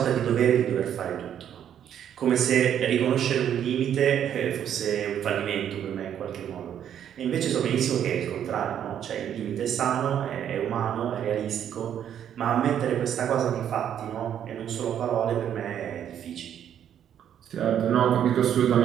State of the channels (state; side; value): quieter; left; 9.6 dB